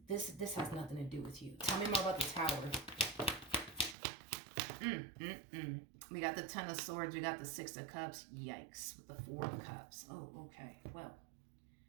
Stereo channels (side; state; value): left; drops out; at 4.0 s